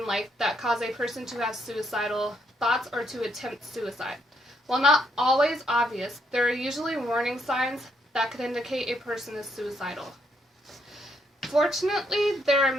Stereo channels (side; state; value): both; normal; correlation 0.74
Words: life that cause a person to have suicidal thoughts or to attempt suicide. While not always obvious, there are usually warning signs that could indicate a person is suicidal. Fortunately, there are